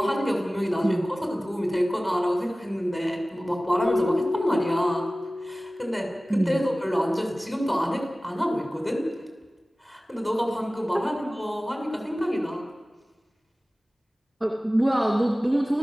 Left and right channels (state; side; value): normal; both; correlation 0.97